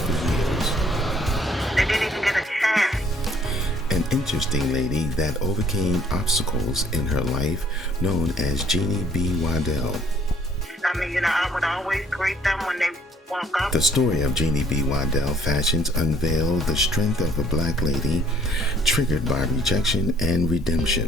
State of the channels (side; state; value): both; normal; correlation 0.62